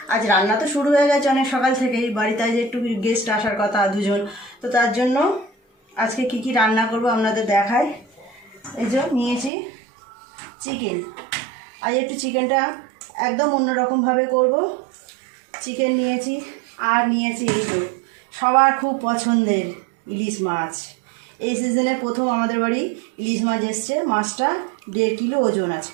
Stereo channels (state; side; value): drops out; left; at 9.5 s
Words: আজ রান্না তো শুরু হয়ে গেছে অনেক সকাল থেকেই, বাড়িতে আজ একটু গেস্ট আসার কথা দুজন, তো তার জন্য আজকে কি কি রান্না করব আপনাদের দেখাই। এই যে নিয়েছি চিকেন, আজ একটু চিকেনটা একদম অন্যরকমভাবে করব। চিকেন নিয়েছি আর নিয়েছি এই যে সবার খুব পছন্দের ইলিশ মাছ। এই সিজনে প্রথম আমাদের বাড়ি ইলিশ মাছ এসছে। মাছটা 1.5 কিলো ওজন আছে,